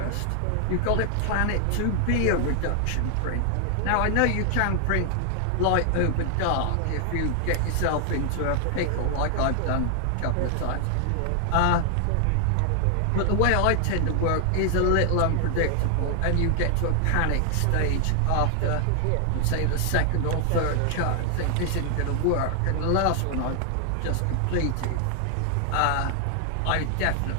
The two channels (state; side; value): different; both; correlation 0.00